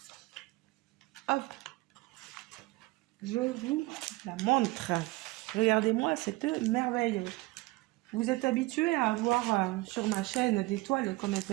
Hop, je vous la montre. Regardez-moi cette merveille. Vous êtes habitués à avoir sur ma chaîne des toiles comme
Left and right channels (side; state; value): left; quieter; 21.4 dB